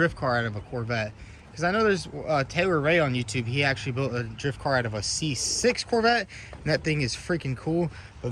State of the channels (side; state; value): both; identical; correlation 1.00